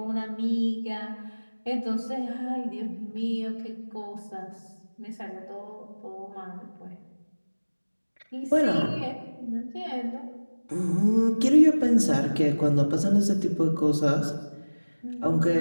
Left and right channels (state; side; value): inverted; both; correlation -1.00